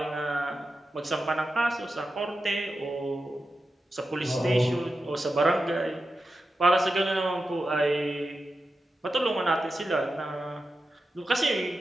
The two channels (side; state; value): both; normal; correlation 0.91